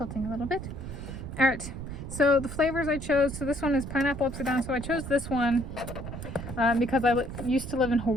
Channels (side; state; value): right; noise; rumble, 8 dB below the sound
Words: a little bit. All right, so the flavors I chose, so this one is Pineapple Upside-Down. So I chose this one because I used to live in